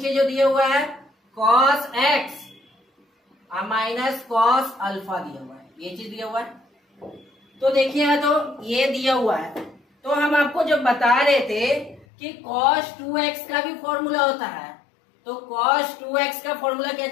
जो दिया हुआ है cos x minus cos alpha दिया हुआ है, ये चीज दिया हुआ है। तो देखिए तो ये दिया हुआ है, तो हम आपको जब बता रहे थे कि cos 2x का भी फॉर्मूला होता है, तो cos 2x का फॉर्मूला क्या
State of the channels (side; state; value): right; drops out; at 12.1 s